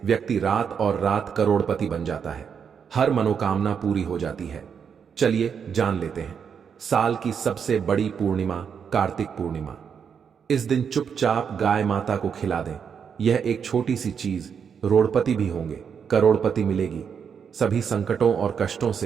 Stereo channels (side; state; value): left; quieter; 7.0 dB